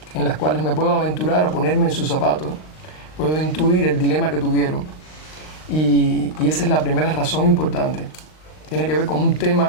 en las cuales me puedo aventurar a ponerme en sus zapatos, puedo intuir el dilema que tuvieron, y esa es la primera razón importante. Tiene que ver con un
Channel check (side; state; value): right; late; 39 ms